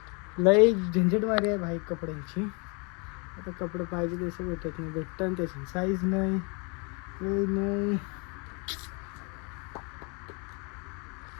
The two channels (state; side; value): quieter; right; 32.9 dB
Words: लई झंझट मारी आहे भाई कपड्यांची. आता कपडे पाहिजे तसं भेटत नाही. भेटतं त्याची साईज नाही नाही.